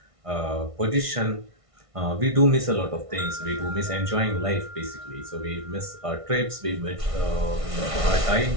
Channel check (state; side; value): late; left; 1.6 ms